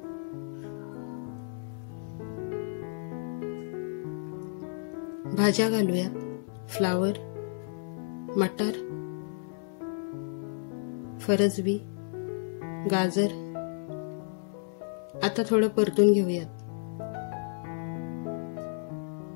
भाज्या घालूयात. फ्लावर, मटार, फरसबी, गाजर. आता थोडं परतून घेऊयात.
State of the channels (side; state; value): right; silent; 57 dB below the other